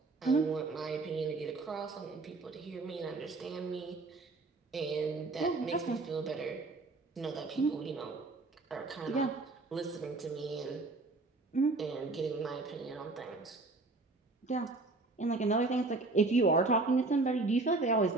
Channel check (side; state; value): left; quieter; 3.4 dB